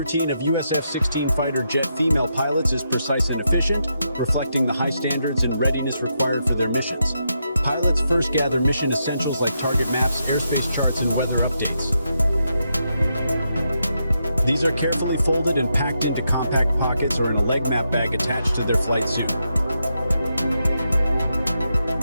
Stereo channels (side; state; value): both; inverted; correlation -0.83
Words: routine of US F-16 fighter jet female pilots is precise and efficient, reflecting the high standards and readiness required for their missions. Pilots first gather mission essentials like target maps, airspace charts, and weather updates. These are carefully folded and packed into compact pockets or in a leg map bag attached to their flight suit.